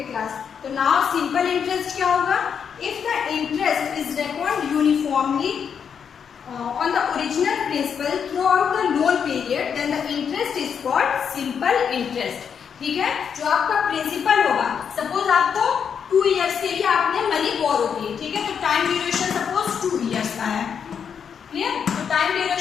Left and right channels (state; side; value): quieter; right; 7.2 dB